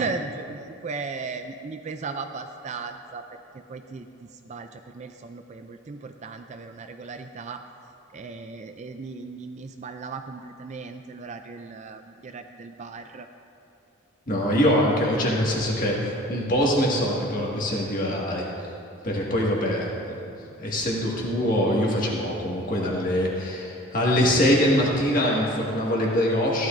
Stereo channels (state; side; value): normal; both; correlation 0.45